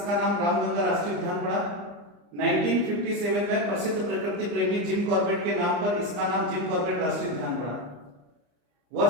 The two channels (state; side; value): late; left; 34 ms